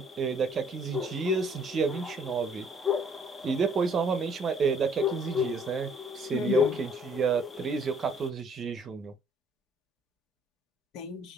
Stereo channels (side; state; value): both; normal; correlation 0.60